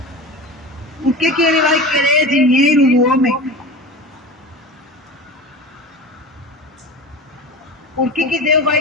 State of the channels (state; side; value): normal; both; correlation 0.31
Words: Por que Ele vai querer dinheiro do homem? Por que Deus